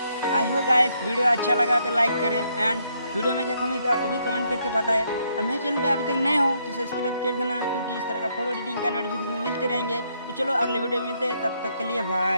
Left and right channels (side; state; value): both; inverted; correlation -0.74